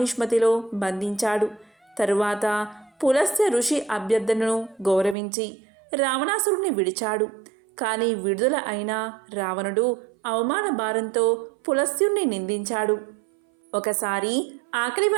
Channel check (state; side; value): drops out; left; at 5.2 s